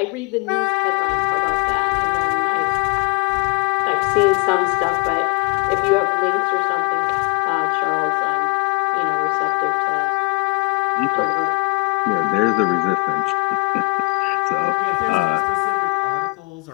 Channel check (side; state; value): right; quieter; 29.4 dB